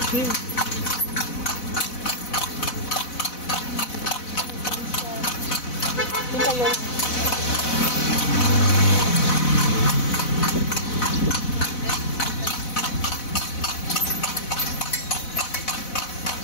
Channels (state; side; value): late; right; 4.0 ms